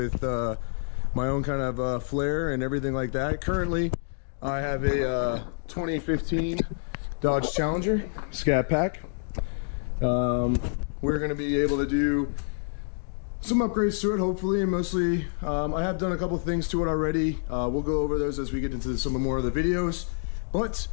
my own kind of flair and everything like that. Currently, I have a 2015 Dodge Challenger Scat Pack. We're going to be able to do some upgrades to it, hopefully, and mostly I have done a couple things to it already. We'll go over those as we get into some more of the videos, but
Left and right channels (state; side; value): silent; right; digital silence